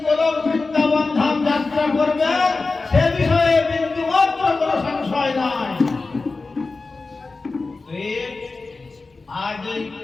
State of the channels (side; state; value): right; quieter; 3.8 dB